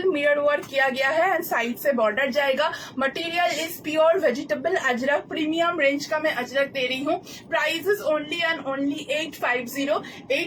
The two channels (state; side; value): identical; both; correlation 1.00